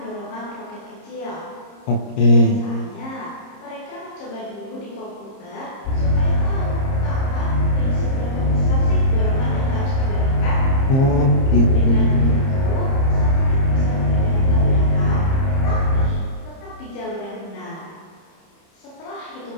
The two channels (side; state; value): right; late; 30 ms